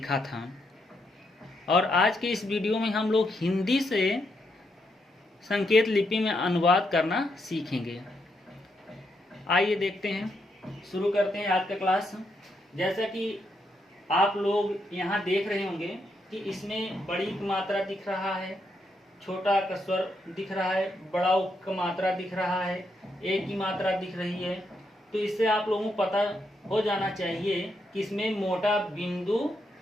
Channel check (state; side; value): normal; both; correlation 0.79